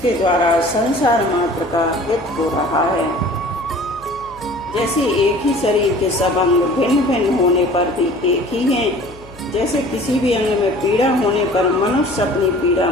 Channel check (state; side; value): noise; left; hum, 22 dB below the sound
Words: द्वारा संसार मात्र का हित हो रहा है। जैसे एक ही शरीर के सब अंग भिन्न भिन्न होने पर भी एक ही हैं, जैसे किसी भी अंग में पीड़ा होने पर मनुष्य अपनी पीड़ा